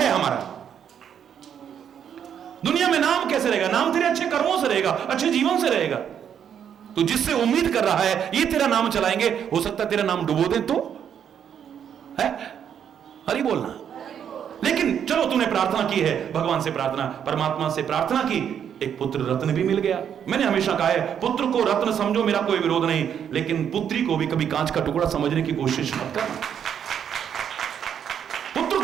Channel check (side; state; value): left; quieter; 8.6 dB